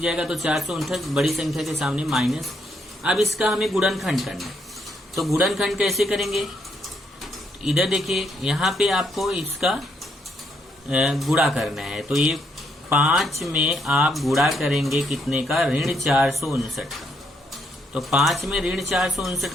जाएगा तो 459 बड़ी संख्या के सामने माइनस। अब इसका हमें गुणनखंड करना है, तो गुणनखंड कैसे करेंगे, इधर देखिए यहाँ पे आपको इसका गुणा करना है। तो ये 5 में आप गुणा करेंगे कितने का, ऋण 459 का। तो 5 में ऋण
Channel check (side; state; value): both; normal; correlation 0.75